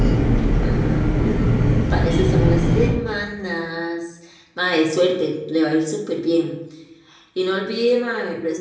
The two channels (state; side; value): identical; both; correlation 1.00